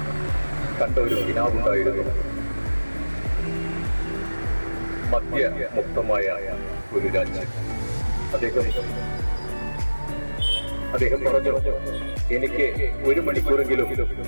കണ്ട ഒരു കിനാവുണ്ടായിരുന്നു. മദ്യമുക്തമായ ഒരു രാജ്യം. അദ്ദേഹം പറഞ്ഞു, എനിക്ക് 1 മണിക്കൂറെങ്കിലും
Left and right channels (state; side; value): inverted; both; correlation -1.00